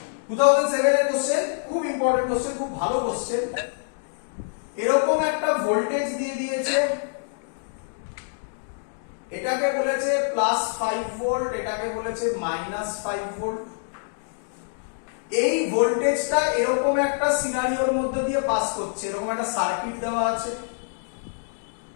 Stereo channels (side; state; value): right; silent; digital silence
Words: 2007 এর কোশ্চেন, খুব ইম্পর্টেন্ট কোশ্চেন, খুব ভালো কোশ্চেন। এরকম একটা ভোল্টেজ দিয়ে দিয়েছে, এটাকে বলেছে +5 ভোল্ট, এটাকে বলেছে -5 ভোল্ট। এই ভোল্টেজটা এরকম একটা সিনারিওর মধ্যে দিয়ে পাস করছে, এরকম একটা সার্কিট দেওয়া আছে।